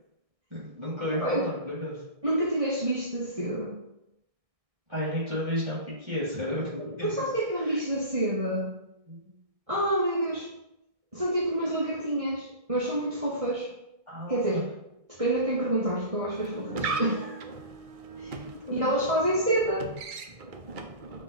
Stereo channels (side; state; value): left; late; 1.6 ms